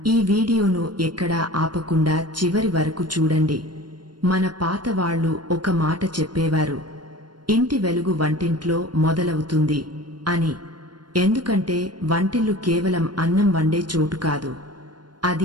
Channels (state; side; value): late; left; 0.71 ms